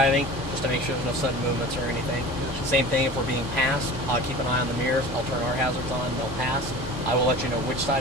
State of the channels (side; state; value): both; normal; correlation 0.38